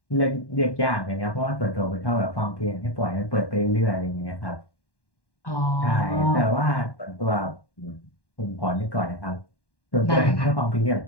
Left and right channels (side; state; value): right; late; 1.1 ms